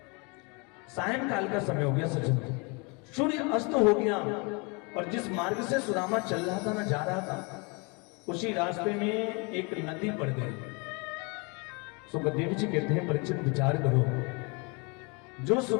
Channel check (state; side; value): quieter; right; 30.9 dB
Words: सायंकाल का समय हो गया सज्जन, सूर्य अस्त हो गया। और जिस मार्ग से सुदामा चल रहा था ना, जा रहा था, उसी रास्ते में एक नदी पड़ गई। सुखदेव जी कहते हैं, परीक्षित विचार करो, जो